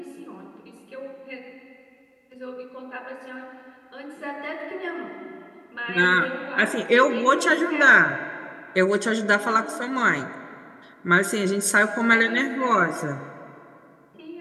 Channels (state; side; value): identical; both; correlation 1.00